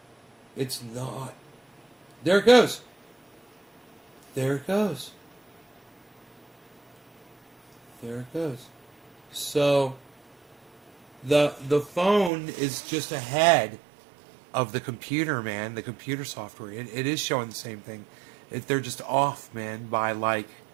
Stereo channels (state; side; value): drops out; left; at 12.3 s